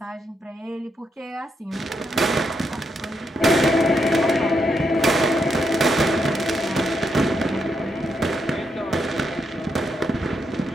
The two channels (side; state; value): both; normal; correlation 0.80